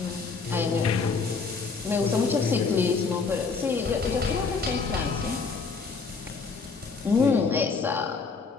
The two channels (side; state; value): right; quieter; 4.7 dB